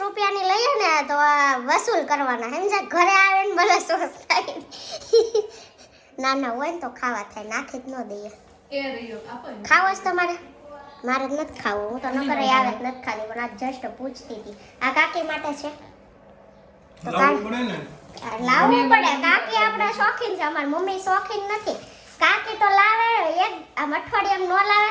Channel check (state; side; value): identical; both; correlation 1.00